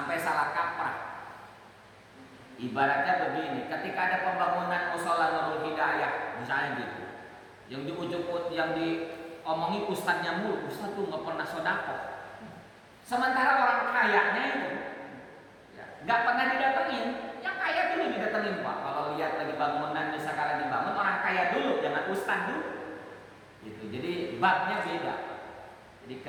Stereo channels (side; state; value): both; identical; correlation 1.00